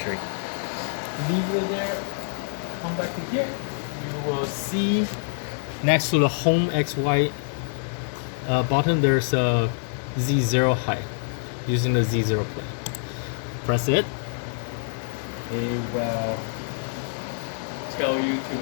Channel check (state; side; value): silent; right; digital silence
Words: Leave it there, come back to here. You will see next to the home XY button, there's a Z0 height using the Z0 plate. Press it. It will tell you